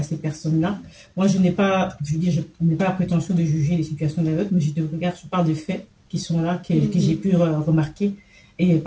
personnes-là. Moi, je n'ai pas la prétention de juger les situations des autres, mais je parle de faits qui sont là, que j'ai pu remarquer. Et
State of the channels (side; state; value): both; identical; correlation 1.00